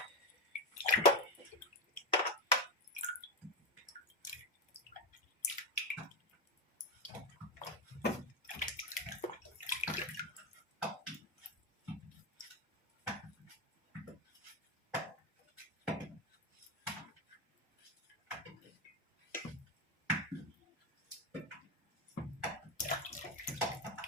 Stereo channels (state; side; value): normal; both; correlation 0.12